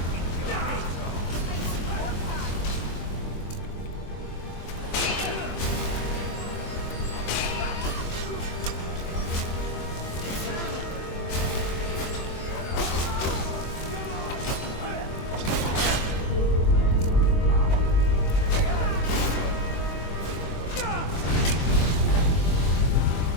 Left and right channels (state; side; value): late; right; 23 ms